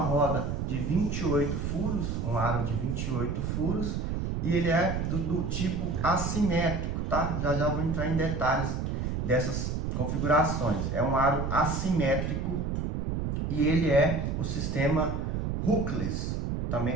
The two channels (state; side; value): noise; right; rumble, 1 dB below the sound